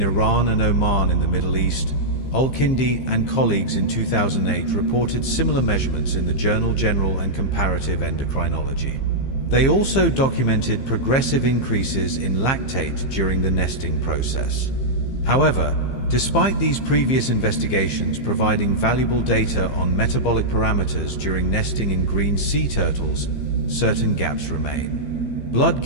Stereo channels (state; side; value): late; right; 15 ms